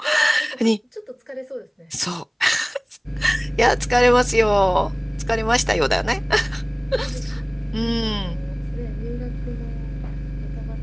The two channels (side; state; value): both; identical; correlation 1.00